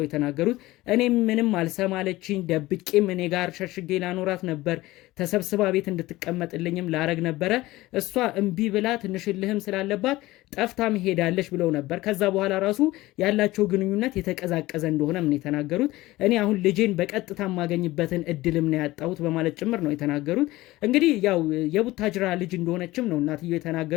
የተናገሩት። እኔም ምንም አልሰማለችኝ፣ ደብቄም እኔ ጋር ሸሽጌ ላኖራት ነበር፣ ተሰብስባ ቤት እንድትቀመጥልኝም ላረግ ነበረ። እሷ እምቢ ብላ ትንሽልህም ስላለባት ጠፍታም ሄዳለች ብለው ነበር። ከዛ በኋላ ራሱ ያላቸው ግንኙነት የተቀዛቀዘ እንደሆነ ምን የተናገሩት። እኔ አሁን ልጄን በቀጥታ የማገኝበትን እድልም ነው ያጣሁት በማለት ጭምር ነው የተናገሩት። እንግዲህ ያው የቡታጅራ ልጅ እንደሆነችም ነው እናትየው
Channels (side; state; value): right; quieter; 18.3 dB